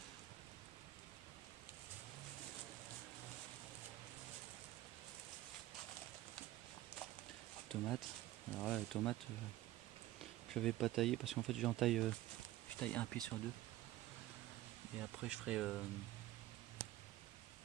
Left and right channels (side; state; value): left; quieter; 15.6 dB